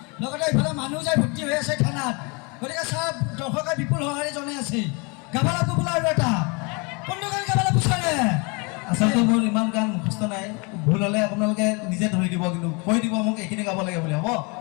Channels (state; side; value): quieter; right; 30.9 dB